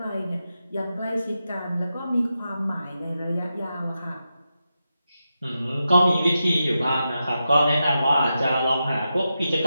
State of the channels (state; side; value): inverted; both; correlation -0.89